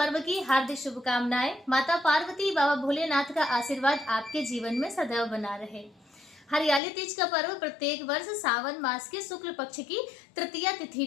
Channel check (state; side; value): drops out; right; at 6.8 s